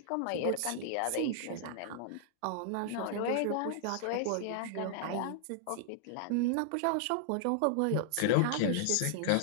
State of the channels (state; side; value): different; both; correlation -0.01